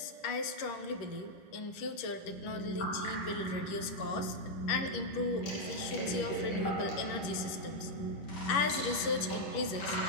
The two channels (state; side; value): late; right; 11 ms